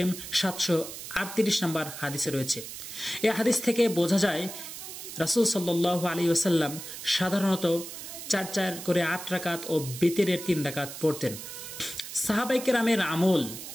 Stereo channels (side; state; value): right; noise; hiss, 10 dB below the sound